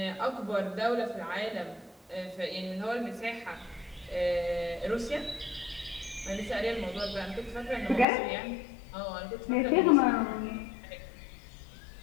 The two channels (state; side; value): drops out; right; at 8.1 s